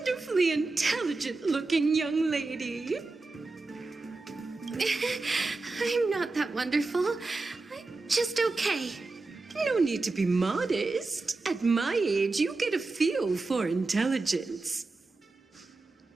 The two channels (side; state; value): left; quieter; 3.6 dB